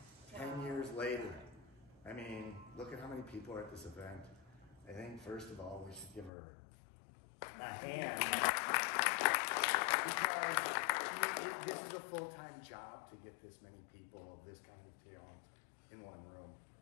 10 years later. I mean, look at how many people are at this event. I think, first of all, we should give her a hand, because this is a full-time job to get this many people of this kind of talent in one room.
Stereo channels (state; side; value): drops out; right; at 6.3 s